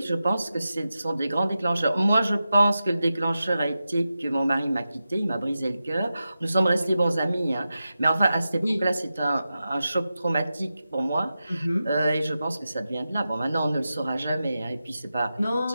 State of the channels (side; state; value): both; inverted; correlation -0.92